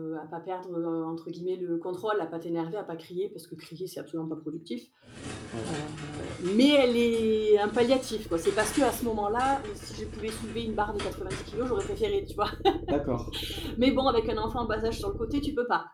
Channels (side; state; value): both; identical; correlation 1.00